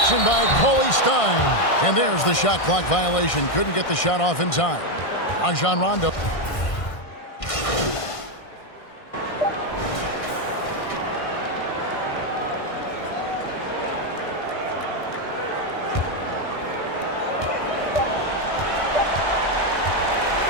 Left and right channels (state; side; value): late; right; 1.6 ms